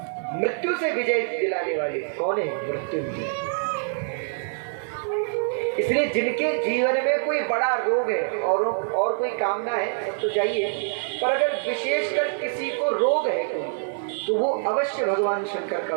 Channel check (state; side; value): silent; left; 62 dB below the other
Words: मृत्यु से विजय दिलाने वाले कौन है? मृत्युंजय। इसलिए जिनके जीवन में कोई बड़ा रोग है और कोई कामना है तो चाहिए, पर अगर विशेषकर किसी को रोग है तो वो अवश्य भगवान शंकर का